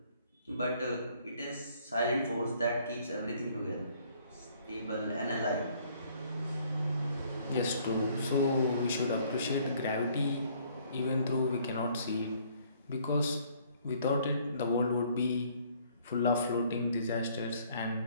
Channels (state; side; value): inverted; both; correlation -0.61